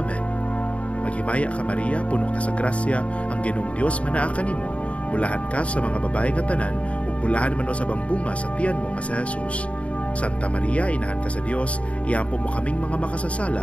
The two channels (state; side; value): late; right; 0.064 ms